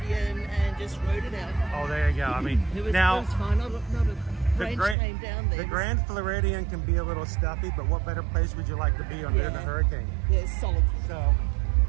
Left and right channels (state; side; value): drops out; left; at 5.0 s